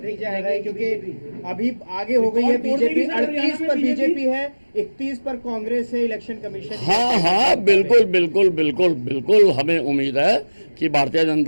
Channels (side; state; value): both; inverted; correlation -1.00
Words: आएंगे, क्योंकि अभी आगे हो गई है बीजेपी, 38 पर बीजेपी है, 31 पर कांग्रेस है, इलेक्शन कमीशन। हाँ हाँ बिल्कुल बिल्कुल बिल्कुल बिल्कुल हमें उम्मीद है कि Bharatiya